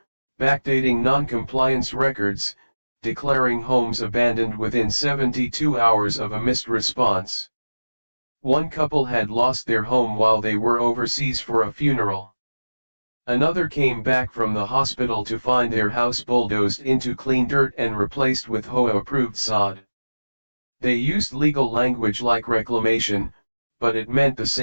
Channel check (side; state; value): both; inverted; correlation -1.00